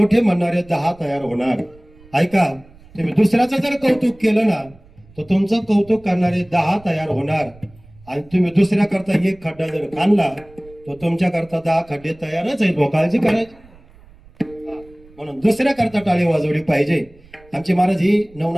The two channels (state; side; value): noise; right; rumble, 26 dB below the sound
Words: म्हणणारे 10 तयार होणार. ऐका, तुम्ही दुसऱ्याचं जर कौतुक केलं ना, तर तुमचं कौतुक करणारे 10 तयार होणार. आणि तुम्ही दुसऱ्या करता एक खड्डा जर काढला, तर तुमच्या करता 10 खड्डे तयारच आहेत. काळजी करायची. म्हणून दुसऱ्या करता टाळी वाजवली पाहिजे. आमचे महाराज ही